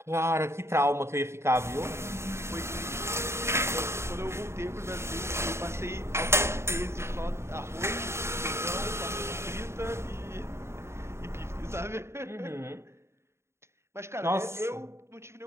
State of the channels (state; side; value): late; left; 0.13 ms